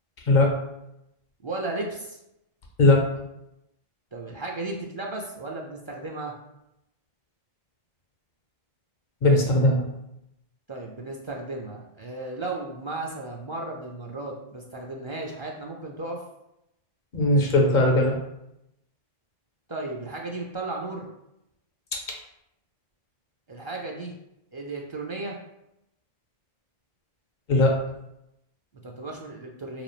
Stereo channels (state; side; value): late; right; 2.2 ms